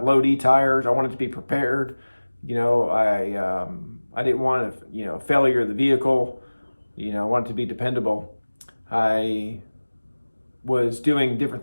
low D tires. I wanted to be prepared. I didn't want a failure of the vehicle. I wanted to be dependable. I was doing different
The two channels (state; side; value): inverted; both; correlation -1.00